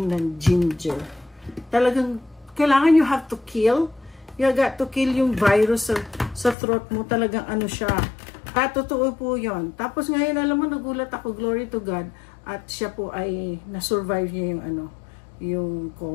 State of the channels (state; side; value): drops out; right; at 6.6 s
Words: ng ginger. Talagang, kailangan you have to kill. You got to kill yung virus sa throat mo. Talagang siya. Totoo po yun. Tapos ngayon, alam mo, nagulat ako, glory to God. At siya po ay, na-survive niya yung